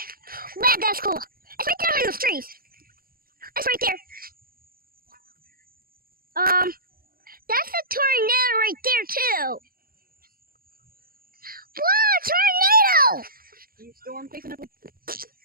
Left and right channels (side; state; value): left; late; 0.42 ms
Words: Wow, that's cool. It's right there in those trees. It's right there. That's a tornado right there too. Whoa, tornado! You storm chasing up?